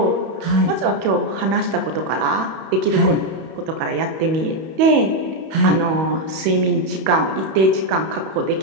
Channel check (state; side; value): late; left; 31 ms